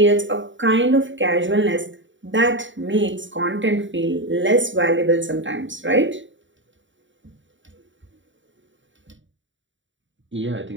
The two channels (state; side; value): late; left; 0.55 ms